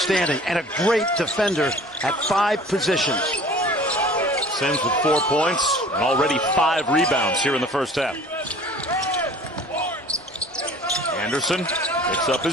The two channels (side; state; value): both; normal; correlation 0.47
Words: and a great defender at 5 positions. Sims with 4 points and already 5 rebounds here in the first half. Anderson picks up